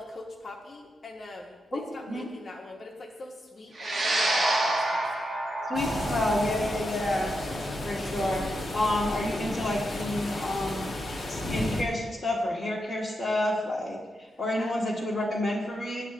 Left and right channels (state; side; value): normal; both; correlation 0.85